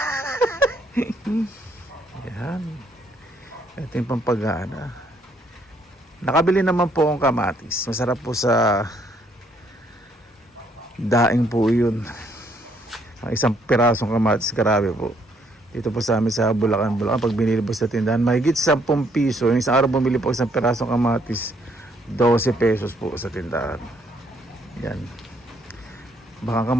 Yan. Ito yung pampagana. Nakabili naman po akong kamatis. Masarap po sa daing po yun. Ang isang pirasong kamatis, grabe po. Dito po sa amin sa Bulacan. Pag binili po sa tindahan, mahigit 10 piso. Yung isang araw bumili po isang pirasong kamatis, 12 pesos po sa tindahan. Yan. Baka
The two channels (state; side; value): normal; both; correlation 0.69